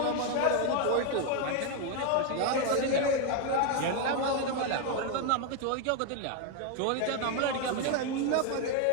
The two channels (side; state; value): both; different; correlation 0.01